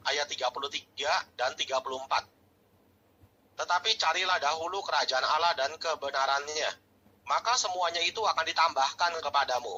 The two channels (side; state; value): both; identical; correlation 1.00